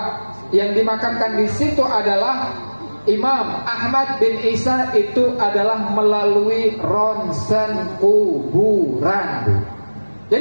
yang dimakamkan di situ adalah Imam Ahmad bin Isa itu adalah melalui ronsen kuburan, Bu.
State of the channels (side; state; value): both; inverted; correlation -1.00